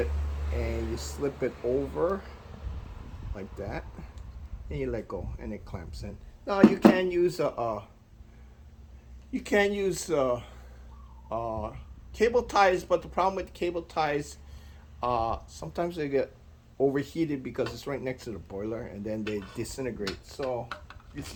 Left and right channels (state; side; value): identical; both; correlation 1.00